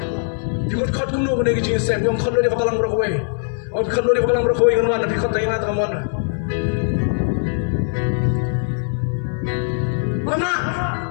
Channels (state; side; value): silent; right; 59 dB below the other